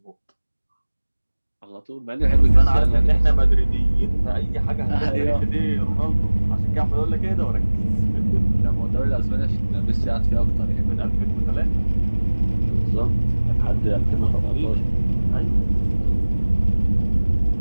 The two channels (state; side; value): inverted; both; correlation -1.00